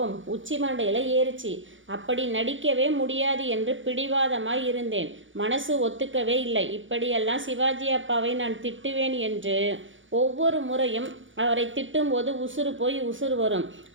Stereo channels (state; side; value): late; left; 0.56 ms